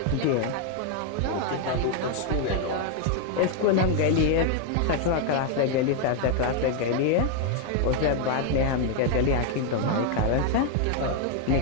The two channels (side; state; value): both; different; correlation 0.01